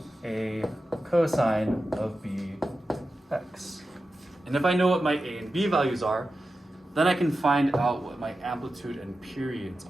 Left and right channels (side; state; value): both; normal; correlation 0.92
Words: a cosine of bx. And if I know what my a and b values are, then I can find out what my amplitude and periods